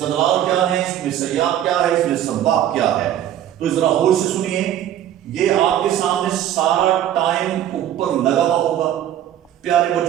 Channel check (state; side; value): quieter; left; 11.3 dB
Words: کیا ہے, اس میں سیاق کیا ہے, اس میں سباق کیا ہے. تو ذرا غور سے سنیے, یہ آپ کے سامنے سارا ٹائم اوپر لگا ہوا ہوگا. پیارے